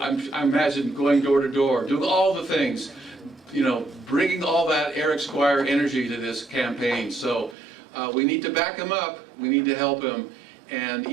I imagine, going door to door, doing all the things, bringing all that Eric Squire energy to this campaign. So we need to back him up. We need to help him, and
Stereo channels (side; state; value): left; drops out; at 7.6 s